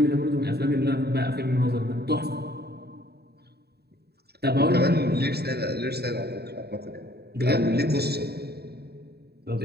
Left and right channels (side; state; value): left; late; 0.47 ms